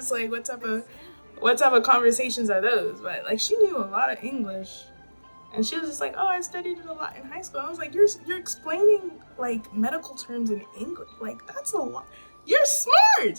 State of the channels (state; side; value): inverted; both; correlation -1.00